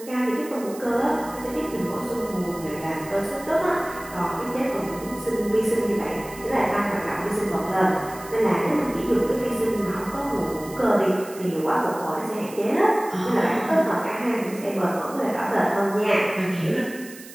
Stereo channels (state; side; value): noise; right; hiss, 17 dB below the sound